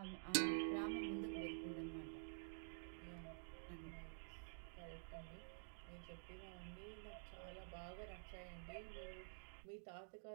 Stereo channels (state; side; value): silent; left; digital silence